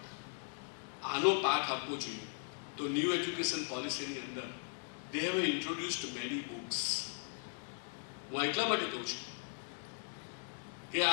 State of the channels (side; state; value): right; silent; 52 dB below the other